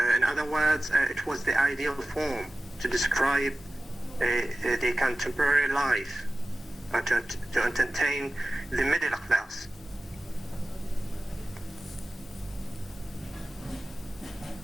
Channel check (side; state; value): both; normal; correlation 0.97